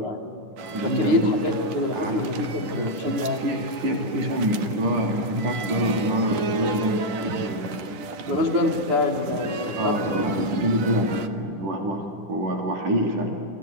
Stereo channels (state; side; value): late; left; 10 ms